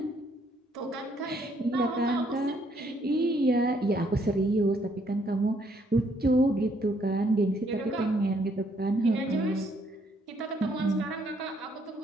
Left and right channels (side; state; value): both; normal; correlation 0.69